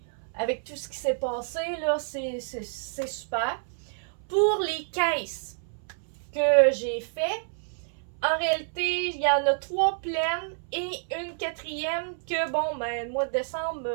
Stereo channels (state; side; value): silent; left; 59 dB below the other